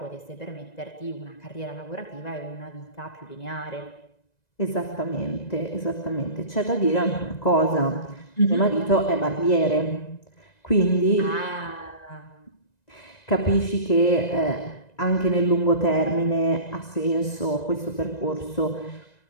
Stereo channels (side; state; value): right; late; 1.9 ms